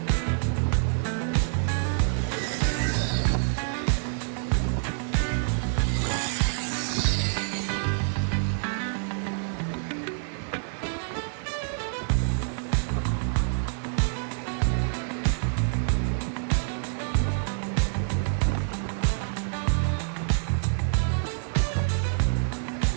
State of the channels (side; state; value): left; silent; digital silence